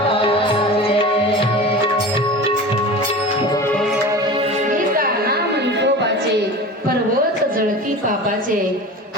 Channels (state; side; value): normal; both; correlation 0.33